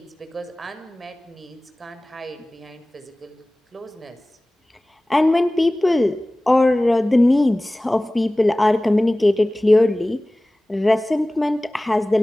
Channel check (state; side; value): normal; both; correlation 0.98